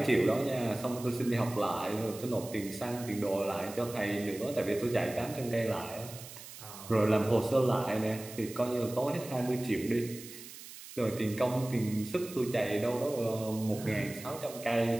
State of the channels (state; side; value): noise; right; hiss, 14 dB below the sound